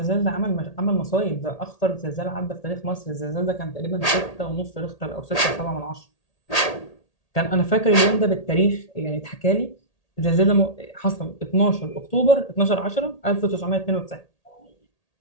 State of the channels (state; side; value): late; right; 1.8 ms